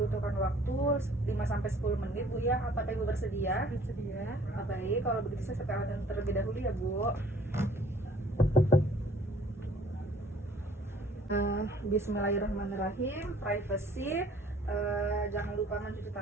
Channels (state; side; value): normal; both; correlation 0.55